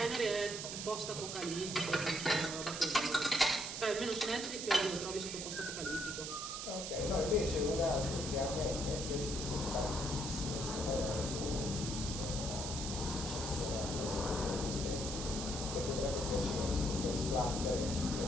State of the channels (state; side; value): noise; right; hiss, 5 dB below the sound